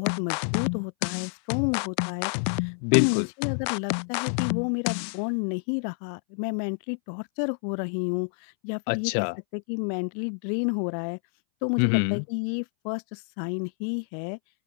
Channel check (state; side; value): silent; right; 60 dB below the other